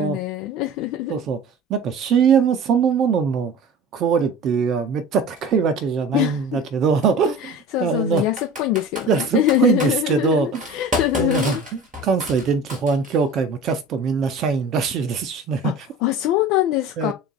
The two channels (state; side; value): normal; both; correlation 0.38